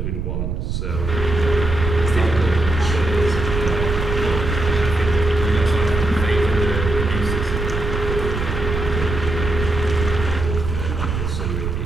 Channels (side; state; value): right; noise; rumble, 3 dB below the sound